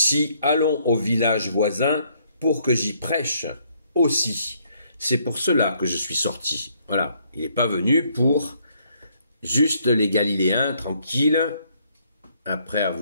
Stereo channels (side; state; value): both; inverted; correlation -0.68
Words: allons au village voisin pour que j'y prêche aussi. » C'est pour cela que je suis sorti. Voilà, il n'est pas venu pour juste les Galiléens tranquilles, après